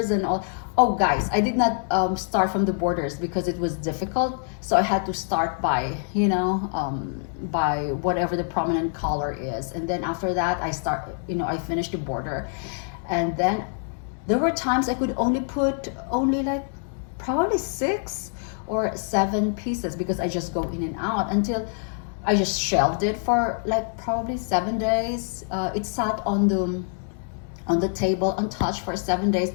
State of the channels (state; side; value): silent; right; 59 dB below the other